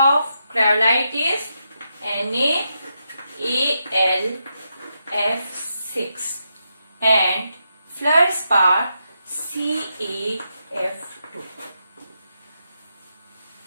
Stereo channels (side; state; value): both; inverted; correlation -0.84